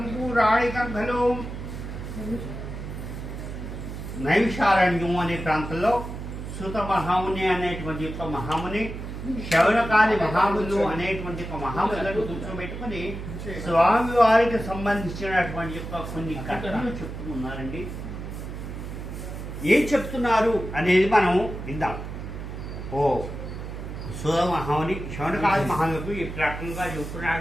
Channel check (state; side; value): noise; right; hum, 8 dB below the sound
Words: పురాణికలో నైమిషారణ్యం అనే ప్రాంతంలో సుత మహాముని అనేటువంటి యొక్క మహాముని శౌనకాది మహాములు అనేటువంటి ఒక మహాములను కూర్చోబెట్టుకుని స్వామివారికి సంబంధించినటువంటి యొక్క కొన్ని కథలు చెప్తున్నారండి. ఏం చెప్తున్నారు అనేది మనం విందాం. ఓ సుత మహాముని శౌనకాది మహాములకు ఈ రకంగా